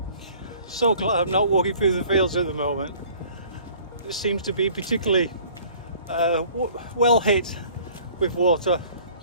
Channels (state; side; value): inverted; both; correlation -0.52